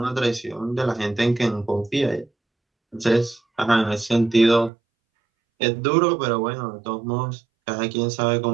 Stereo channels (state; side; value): drops out; left; at 4.7 s